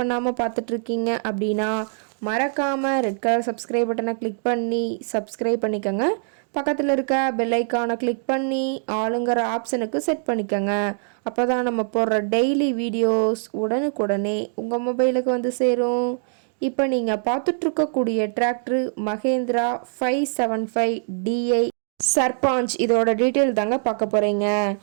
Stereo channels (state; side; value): silent; left; digital silence